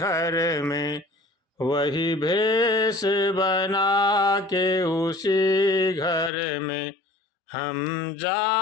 में, वही भेष बना के उसी घर में हम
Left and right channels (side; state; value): right; drops out; at 6.3 s